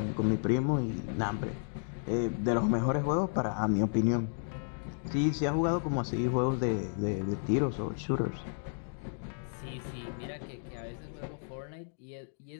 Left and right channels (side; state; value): right; silent; digital silence